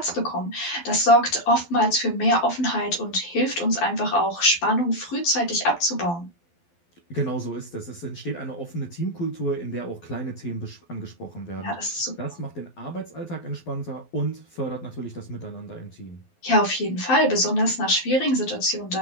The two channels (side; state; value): right; late; 12 ms